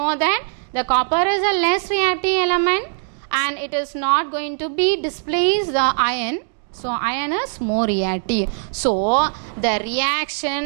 that the copper is a less reactive element and it is not going to be displace the iron. So iron is more reactive. So the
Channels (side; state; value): left; silent; digital silence